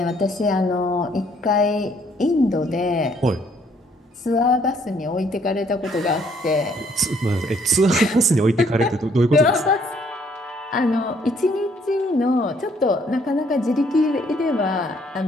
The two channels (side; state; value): both; normal; correlation 0.65